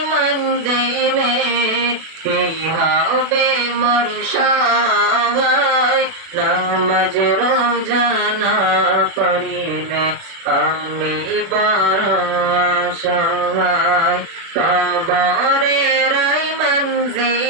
মঞ্জিলে কি হবে মোর সগাই, নামাজ রোজা না করিলে আমি বড় অসহায়। কবরের এই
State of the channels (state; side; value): late; left; 36 ms